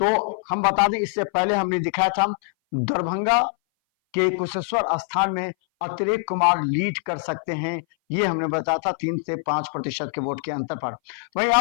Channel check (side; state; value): right; silent; 59 dB below the other